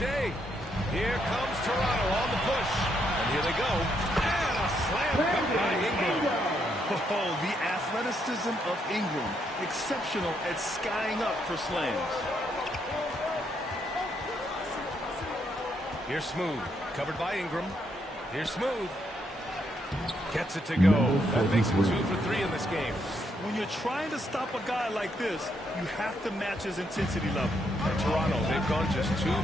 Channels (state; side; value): normal; both; correlation 0.76